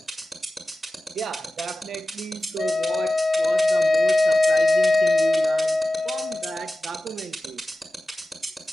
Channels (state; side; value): normal; both; correlation 0.95